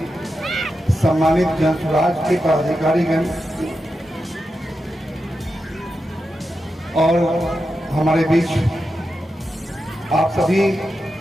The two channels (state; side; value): normal; both; correlation 0.89